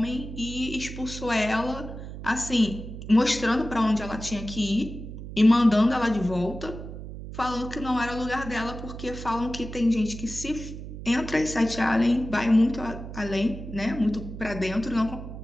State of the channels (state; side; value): noise; right; hum, 10 dB below the sound